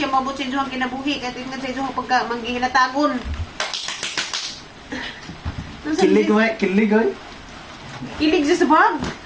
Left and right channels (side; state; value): both; identical; correlation 1.00